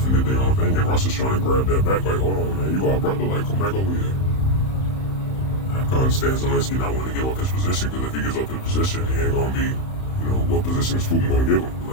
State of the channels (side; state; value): right; late; 31 ms